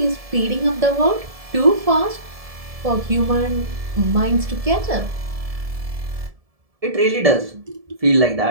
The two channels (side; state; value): left; late; 1.7 ms